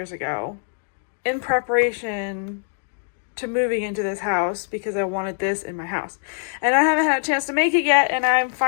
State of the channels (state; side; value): silent; right; 63 dB below the other